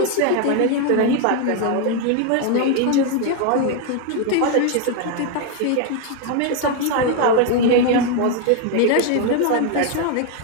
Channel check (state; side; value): different; both; correlation 0.01